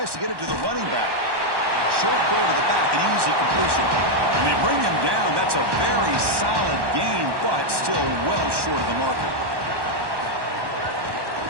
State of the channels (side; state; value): left; late; 1.1 ms